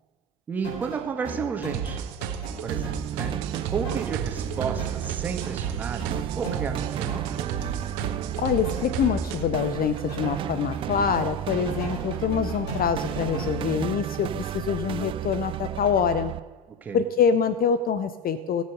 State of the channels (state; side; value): normal; both; correlation 0.22